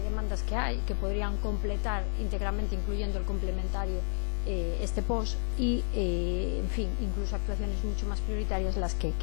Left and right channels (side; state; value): right; silent; 57 dB below the other